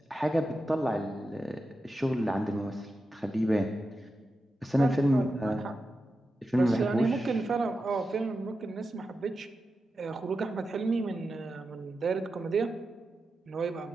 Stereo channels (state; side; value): normal; both; correlation 0.90